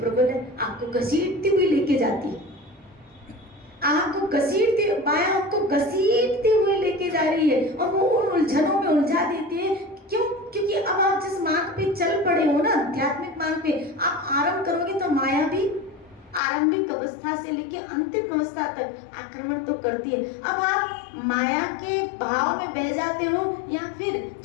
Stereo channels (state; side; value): drops out; right; at 16.4 s